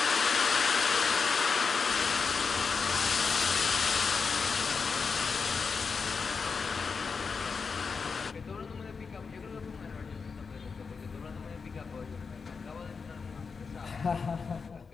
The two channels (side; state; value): right; quieter; 5.2 dB